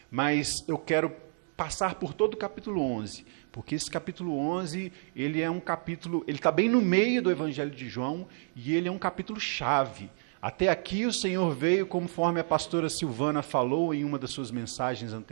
mas eu quero passar por todo o capítulo 11, porque esse capítulo 11, ele é um capítulo, ele está bem no meio do Evangelho de João, e ele é um capítulo chave. Até aqui o Senhor veio, conforme a pastora Silvana falou em uma das suas mensagens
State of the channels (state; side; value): silent; left; 58 dB below the other